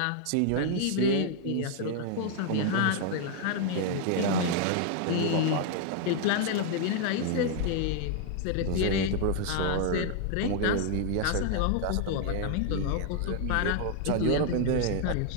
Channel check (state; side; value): different; both; correlation 0.00